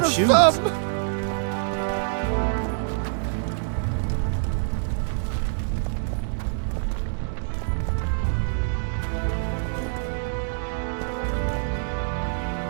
a shoes. thumb!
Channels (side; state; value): left; silent; digital silence